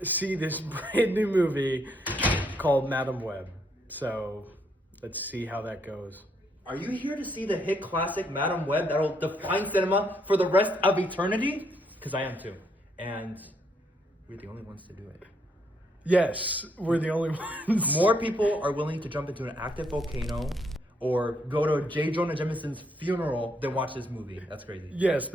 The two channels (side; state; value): both; normal; correlation 0.73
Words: see this brand new movie called Madame Web. So let's see how that goes. Are you here to see the hit classic Madame Web that'll define cinema for the rest of eternity? Because I am too. And we're the only ones to do it. Yes, we're the only ones. More people are willing to jump into an active volcano or go to J. Jonah Jameson's funeral than watch this movie. That's crazy. Yes,